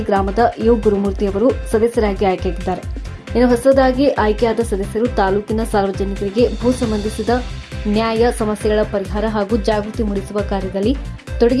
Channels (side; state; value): both; identical; correlation 1.00